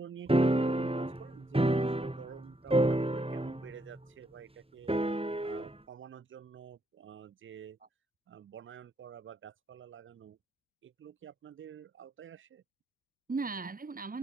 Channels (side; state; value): both; normal; correlation 0.75